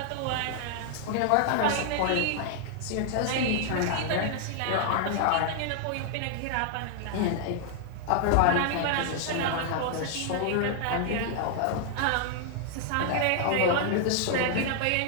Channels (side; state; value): both; different; correlation 0.00